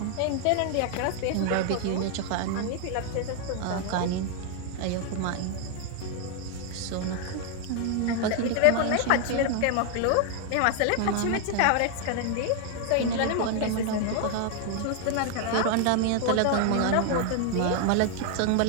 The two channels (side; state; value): both; different; correlation 0.00